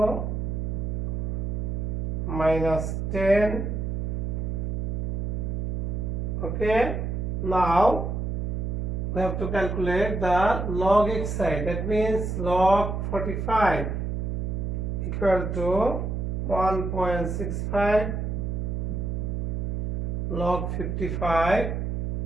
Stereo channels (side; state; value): right; noise; hum, 1 dB below the sound